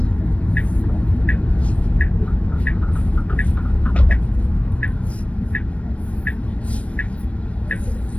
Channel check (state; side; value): late; right; 0.063 ms